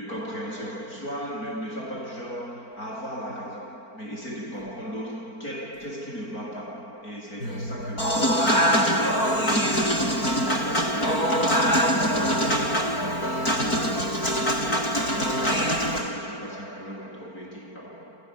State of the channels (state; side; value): late; right; 4.4 ms